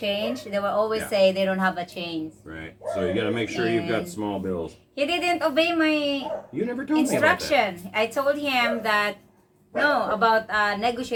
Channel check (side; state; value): both; identical; correlation 1.00